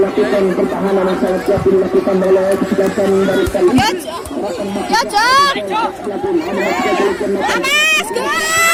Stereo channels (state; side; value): identical; both; correlation 1.00